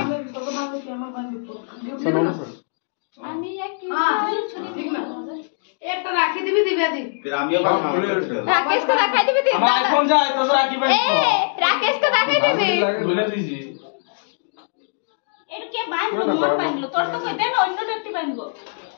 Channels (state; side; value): silent; right; digital silence